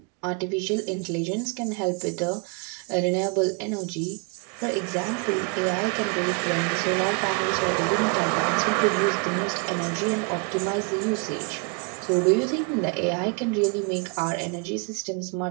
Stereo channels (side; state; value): left; quieter; 35.0 dB